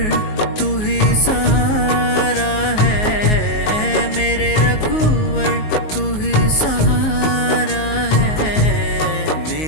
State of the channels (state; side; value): late; right; 19 ms